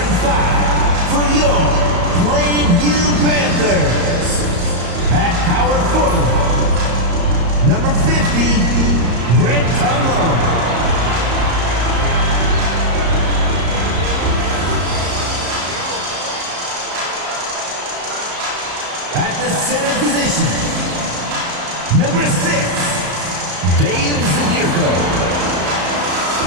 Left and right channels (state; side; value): late; left; 34 ms